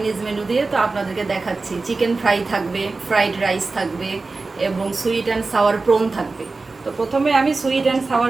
মেনু দিয়ে। তো আপনাদেরকে দেখাচ্ছি, চিকেন ফ্রাই থাকবে, ফ্রাইড রাইস থাকবে এবং সুইট অ্যান্ড সাওয়ার প্রন থাকবে। তো প্রথমে আমি সুইট অ্যান্ড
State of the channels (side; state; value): left; quieter; 3.7 dB